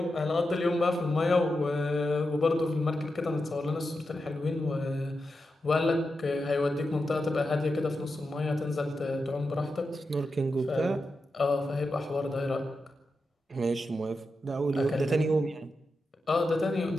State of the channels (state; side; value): normal; both; correlation 0.89